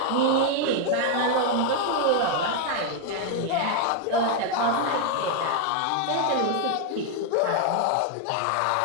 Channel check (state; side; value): different; both; correlation 0.00